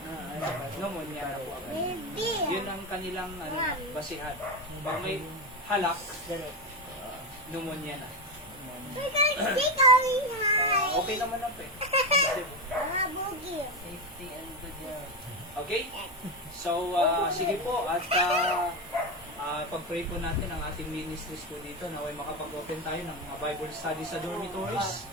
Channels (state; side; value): normal; both; correlation 0.13